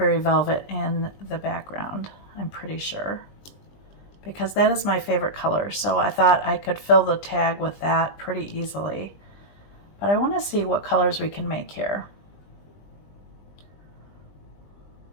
velvet in the background, I'm pretty sure, because that is my favorite color. So I thought I could fill the tag with that pretty easily. But I want to see what colors we can make here.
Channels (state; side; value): late; right; 20 ms